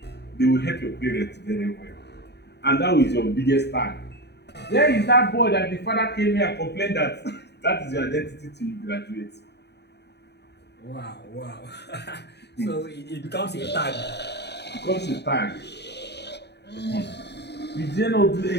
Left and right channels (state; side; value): late; right; 0.49 ms